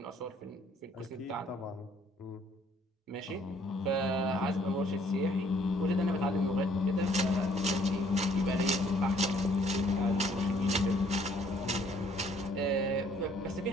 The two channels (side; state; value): both; normal; correlation 0.62